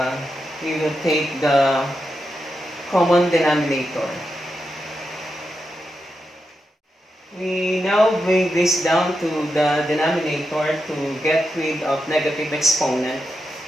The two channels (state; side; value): normal; both; correlation 0.87